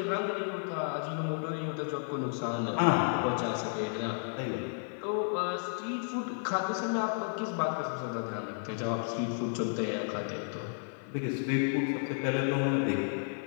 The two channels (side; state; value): right; silent; 56 dB below the other